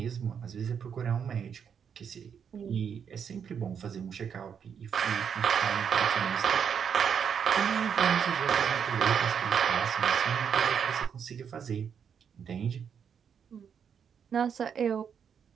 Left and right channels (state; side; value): quieter; left; 7.4 dB